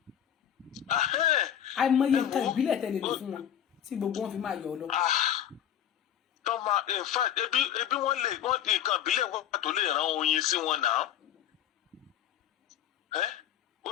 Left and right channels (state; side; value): quieter; right; 10.2 dB